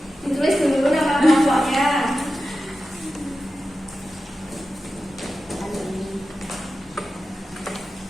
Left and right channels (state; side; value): normal; both; correlation 0.93